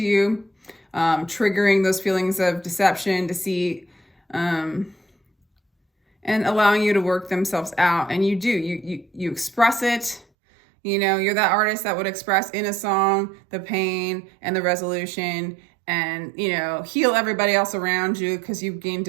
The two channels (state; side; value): drops out; left; at 10.2 s